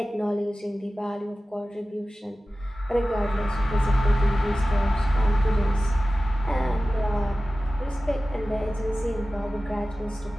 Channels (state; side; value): normal; both; correlation 0.96